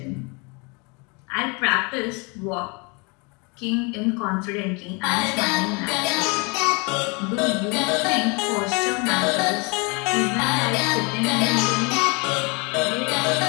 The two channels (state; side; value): quieter; right; 30.4 dB